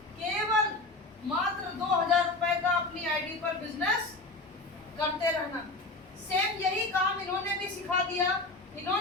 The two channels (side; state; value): right; quieter; 3.1 dB